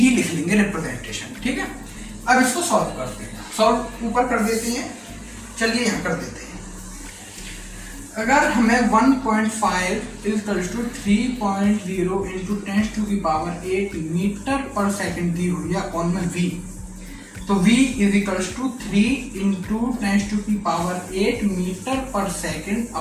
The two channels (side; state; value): both; identical; correlation 1.00